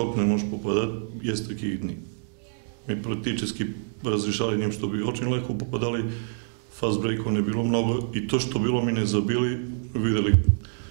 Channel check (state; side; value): silent; left; digital silence